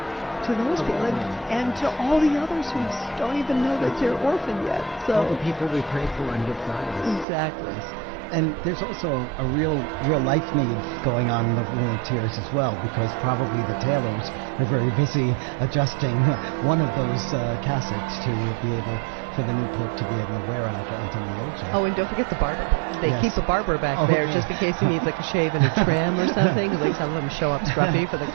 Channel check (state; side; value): drops out; left; at 7.2 s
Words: to those people, and to all the others who don't even know that they're orphaned yet. So all the people we pray for and Good Fridays. Exactly. And there's also a real life need going on in the Room of Tears as well, because probably the tailors are very busy adjusting one of those cassocks to be able for the new pope to be able to wear out onto the loggia. Oh, and don't forget the barber. They keep a barber back there just in case he needs like a shave and a trim or something. Because like some of them show up scruffy for the